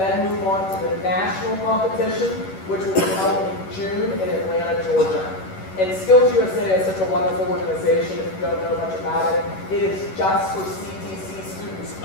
move on to the national competition, which will be held in June in Atlanta, Georgia. And Skills USA is such a wonderful organization. If you don't know much about it, it is just for CTC students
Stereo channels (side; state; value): right; late; 11 ms